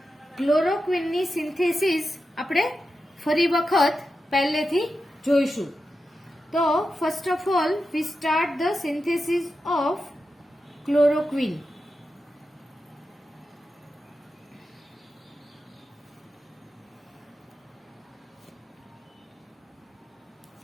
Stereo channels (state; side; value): normal; both; correlation 0.90